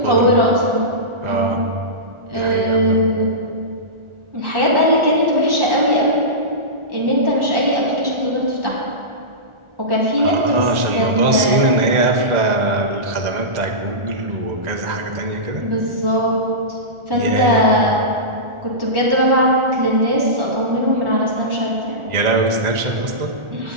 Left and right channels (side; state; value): left; late; 1.4 ms